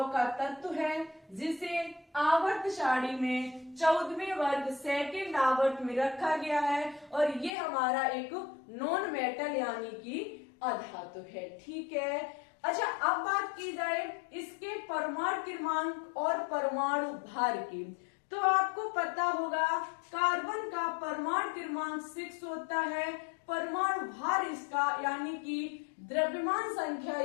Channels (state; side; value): drops out; right; at 7.6 s